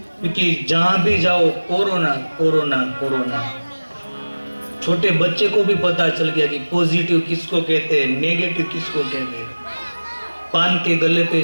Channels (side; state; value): both; inverted; correlation -1.00